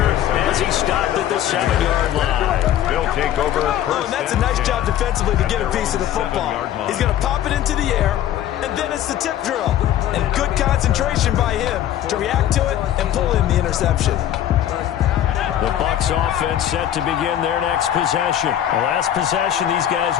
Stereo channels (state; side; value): quieter; right; 11.4 dB